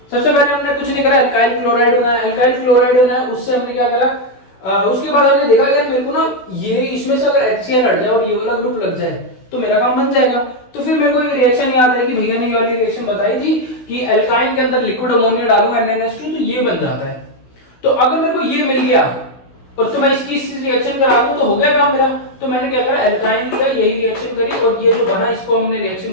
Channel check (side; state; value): right; late; 16 ms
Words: सबसे पहले हमने कुछ नहीं करा, अल्काइल क्लोराइड बनाया, उससे हमने क्या करा, उसके बाद हमने देखा यार मेरे को ना ये इसमें से अगर HCl हट जाए और ये वाला ग्रुप लग जाए तो मेरा काम बन जाएगा। तो फिर मेरे को ये रिएक्शन याद है कि भैया ने ये वाली रिएक्शन बताई थी कि अल्काइन के अंदर लिक्विड अमोनिया डालूंगा NaNH2 तो ये बन जाता है। तो अगर मेरे को ये मिल गया और तो मैं इसकी रिएक्शन करा दूं तो हो गया काम मेरा। तो मैंने क्या करा, अल्काइन लिया, यही रिएक्शन करी और ये जो बना इसको हमने रिएक्शन